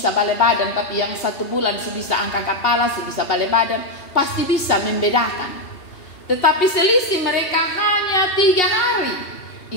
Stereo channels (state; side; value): late; right; 2.8 ms